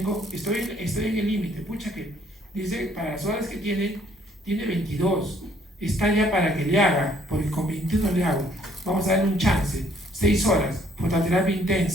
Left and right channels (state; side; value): normal; both; correlation 0.64